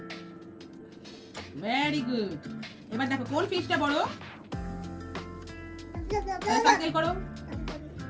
Very good. এবার দেখো কোন ফিশটা বড়? সার্কেল করো।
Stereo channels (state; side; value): identical; both; correlation 1.00